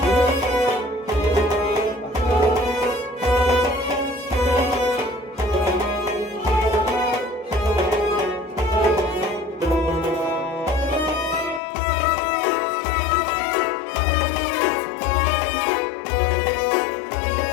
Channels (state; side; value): drops out; right; at 11.6 s